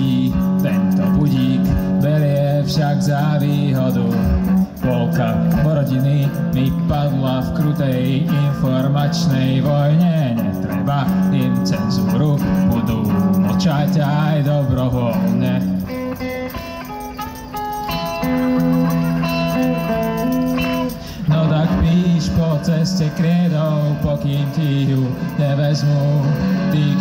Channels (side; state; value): both; identical; correlation 1.00